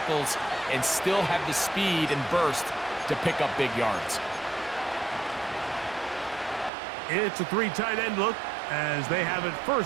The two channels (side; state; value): left; drops out; at 6.7 s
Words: and still have the speed and burst to pick up big yards. It's a 3 tight end look as they have it